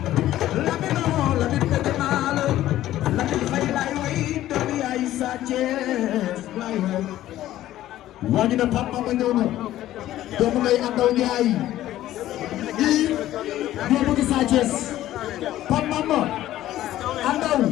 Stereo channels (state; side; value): quieter; right; 13.9 dB